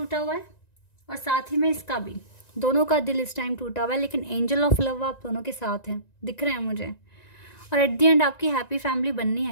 हुआ है और साथ ही में इसका भी, दोनों का दिल इस टाइम टूटा हुआ है, लेकिन एंजल ऑफ लव आप दोनों के साथ हैं, दिख रहे हैं मुझे। और एट द एंड आपकी हैप्पी फैमिली बननी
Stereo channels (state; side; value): late; right; 1.9 ms